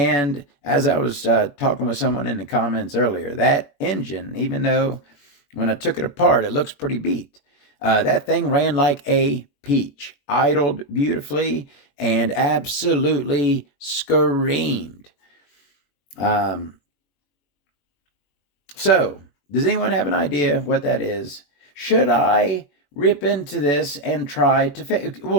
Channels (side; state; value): right; late; 21 ms